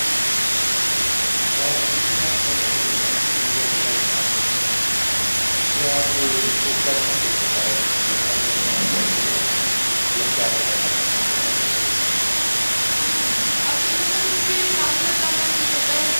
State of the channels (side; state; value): both; inverted; correlation -1.00